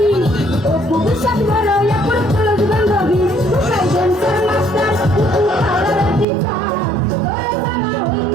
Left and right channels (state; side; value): drops out; left; at 6.2 s